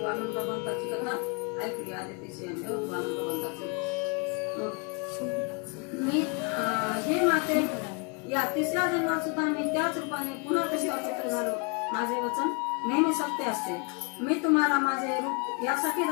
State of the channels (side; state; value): right; quieter; 34.3 dB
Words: वामन भगवंताची कथा ऐकली, आदितीची वामन भगवंताची. मी हे माते, या तिसऱ्या जन्मात सुद्धा मी त्याच रूपाने पुन्हा कशा पुत्र झालो. माझे वचन नेहमी सत्य असते. मी तुम्हाला माझे रूप यासाठी